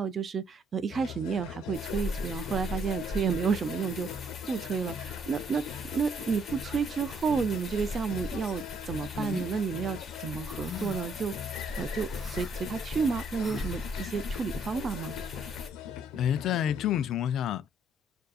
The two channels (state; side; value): normal; both; correlation 0.67